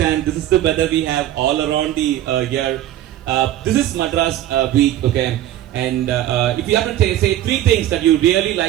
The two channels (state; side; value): quieter; left; 12.8 dB